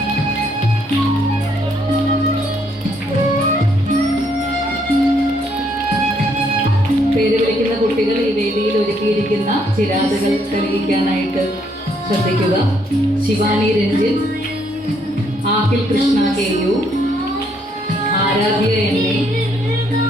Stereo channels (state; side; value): normal; both; correlation 0.71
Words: പേര് വിളിക്കുന്ന കുട്ടികൾ ഈ വേദിയിൽ ഒരുക്കിയിരിക്കുന്ന ചിരാതുകൾ തെളിയിക്കാനായിട്ട് ശ്രദ്ധിക്കുക. ശിവാനി രഞ്ജിൻ, ആഖിൽ കൃഷ്ണ കെ.യു, ആരാധ്യ എന്നെ,